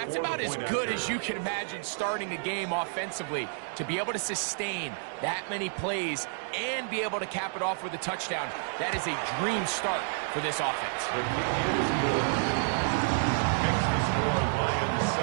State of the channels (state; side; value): silent; left; digital silence